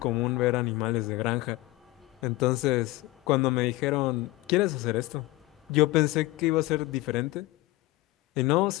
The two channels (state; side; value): quieter; right; 19.2 dB